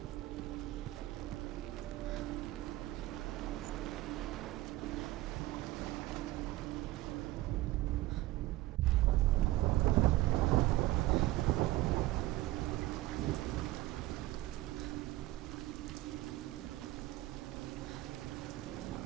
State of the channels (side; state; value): left; quieter; 16.9 dB